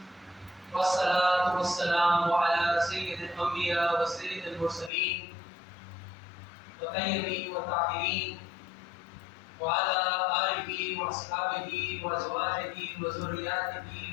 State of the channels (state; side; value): drops out; right; at 4.9 s